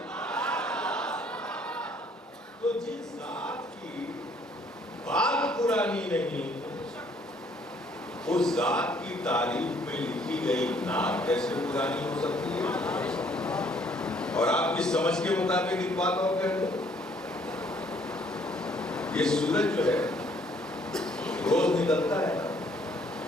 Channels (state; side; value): normal; both; correlation 0.63